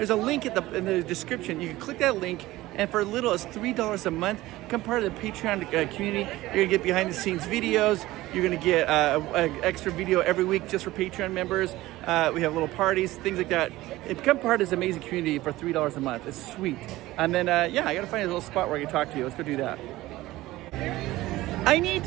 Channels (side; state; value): left; quieter; 17.5 dB